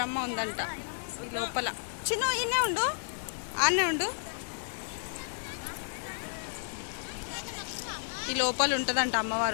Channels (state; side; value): silent; right; 56 dB below the other